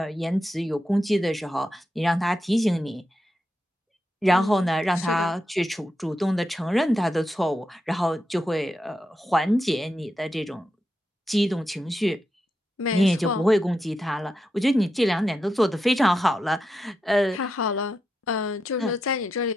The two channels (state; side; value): normal; both; correlation 0.86